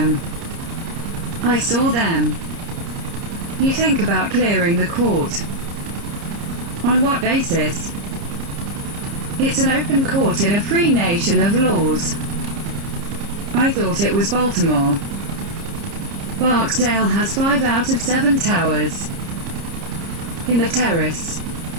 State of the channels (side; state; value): left; late; 30 ms